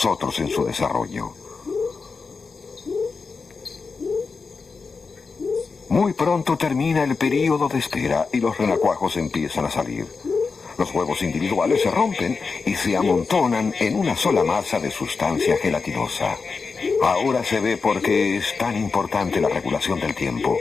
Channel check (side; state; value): right; quieter; 4.7 dB